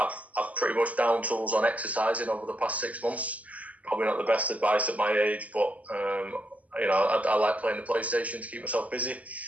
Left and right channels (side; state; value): left; late; 0.072 ms